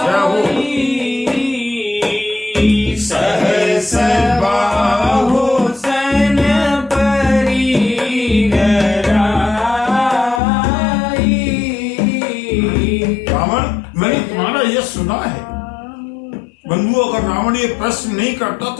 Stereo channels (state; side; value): drops out; right; at 10.4 s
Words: सहस बाहु सन परी रावण, मैंने तुम्हारा यह सुना है। बंधु, अगर रावण ये प्रश्न नहीं करता